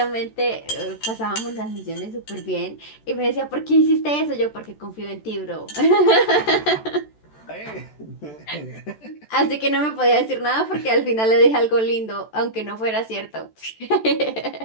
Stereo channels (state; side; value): late; right; 14 ms